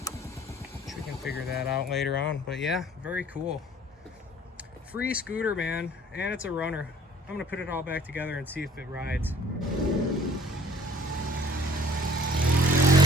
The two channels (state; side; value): normal; both; correlation 0.54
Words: which we can figure that out later on. But yeah, very cool. Free scooter, man, and it's a runner. I'm gonna put it all back together and see if it rides.